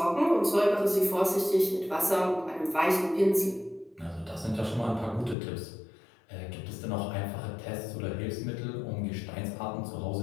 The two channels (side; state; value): right; drops out; at 5.4 s